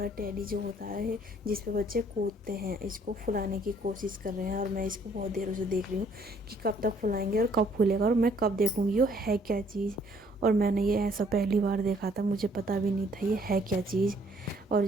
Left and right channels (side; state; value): both; normal; correlation 0.63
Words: टेडी जो होता है जिस पे बच्चे कूदते हैं, इसको फुलाने की कोशिश कर रहे हैं। और मैं इसको बहुत देर से देख रही हूँ कि कब तक फुलाएंगे और कब फूलेगा और मैं कब देखूँगी ये है क्या चीज़। और मैंने ये ऐसा पहली बार देखा था, मुझे पता भी नहीं था ये है क्या चीज़। और